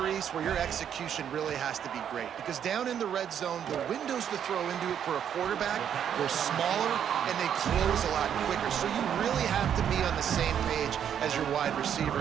where your execution really has to be great. Because down in the red zone, the windows to throw into it for a quarterback, they're smaller and they close a lot quicker. So you really have to be on the same page as your wide receiver.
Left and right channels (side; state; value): left; quieter; 8.9 dB